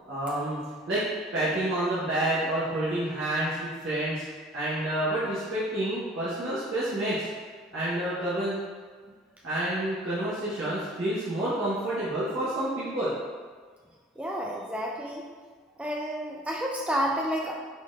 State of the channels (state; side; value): normal; both; correlation 0.50